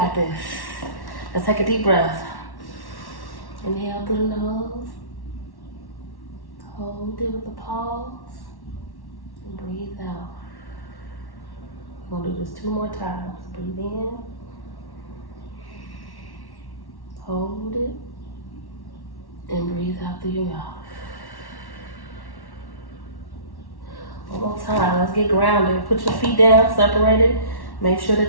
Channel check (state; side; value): late; right; 1.1 ms